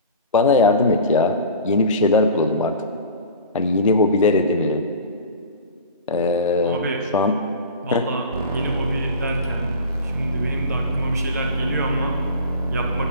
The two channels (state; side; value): inverted; both; correlation -0.36